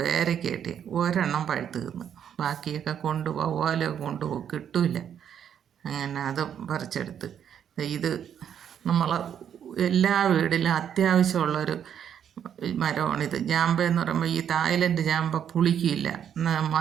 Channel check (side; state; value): left; quieter; 8.9 dB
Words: കിട്ടി. ഒരെണ്ണം പഴുത്ത് തിന്ന്, ബാക്കിയൊക്കെ വവ്വാലൊക്കെ കൊണ്ടുപോകും, കിട്ടില്ല. അങ്ങനെ അത് പറിച്ചെടുത്ത്. ഇത് നമ്മളെ എല്ലാ വീട്ടിലും അത്യാവശ്യമുള്ളൊരു മരമാണിത്. ജാമ്പ എന്ന് പറയുമ്പോൾ ഈ തായ്ലൻഡ് ജാമ്പ പുളിക്കില്ല,